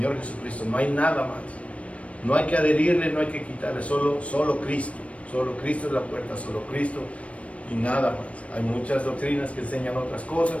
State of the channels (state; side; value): late; right; 0.064 ms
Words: Jesucristo. No hay nada más. No hay que adherirle, no hay que quitarle, solo Cristo. Solo Cristo es la puerta, solo Cristo y nada más. Hay muchas doctrinas que enseñan otras cosas,